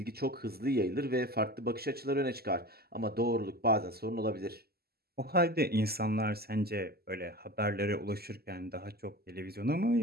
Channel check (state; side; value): late; left; 0.46 ms